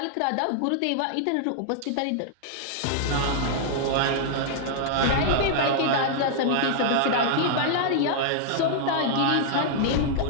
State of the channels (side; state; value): both; different; correlation -0.01